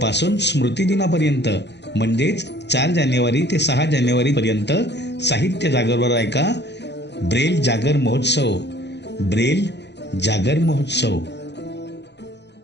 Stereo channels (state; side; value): late; right; 0.50 ms